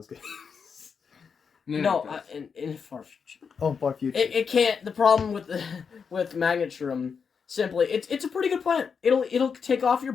games. No, in far future. Oh, far future. It can't. The problem with Magnetshroom, simply, it's a pretty good plant. It'll take off your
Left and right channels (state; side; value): quieter; right; 6.1 dB